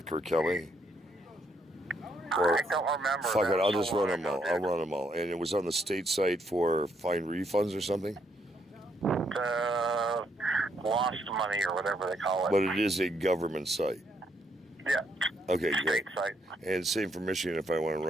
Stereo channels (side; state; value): both; normal; correlation 0.74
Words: Kirk Kelly? Or, I don't remember. Fuck it, I'll just run them all. I'll run them all. And it was on the state site for fine refunds or something? Lost money or whatever they call it. But it is a government site. Yeah. Okay, state good. site. And same for Michigan if I want to